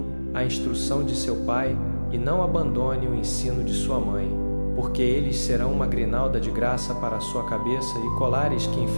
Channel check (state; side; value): inverted; both; correlation -1.00